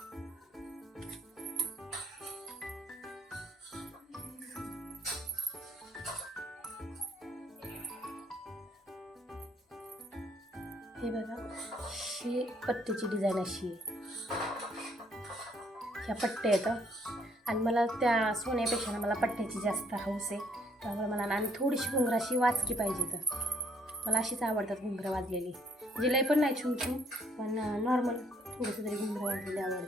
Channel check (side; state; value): both; normal; correlation 0.66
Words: हे बघा, ही पट्टीची डिझाईन अशी आहे. ह्या पट्ट्या येतं आणि मला त्या सोन्यापेक्षा ना मला पट्ट्याची जास्त हौस आहे. त्यामुळे मला ना आणि थोडीशी घुंगराशी वाचकी पाहिजे. तर मला अशीच आवडतात घुंगरं वाजलेली, म्हणजे लय पण नाही छून छून, पण नॉर्मल थोडंसं तरी घुंगरं वाजलेली